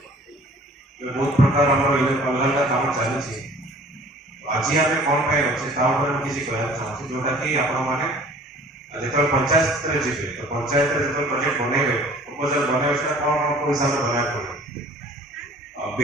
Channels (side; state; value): both; normal; correlation 0.50